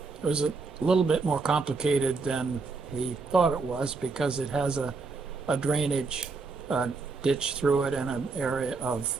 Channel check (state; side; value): quieter; left; 4.3 dB